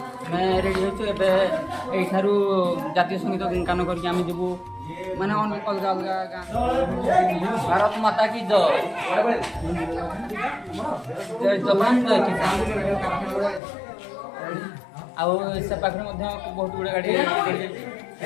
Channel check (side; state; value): right; drops out; at 13.6 s